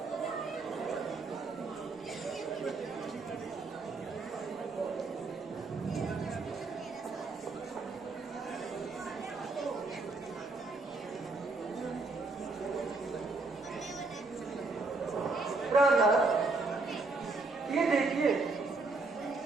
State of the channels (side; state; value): left; quieter; 3.6 dB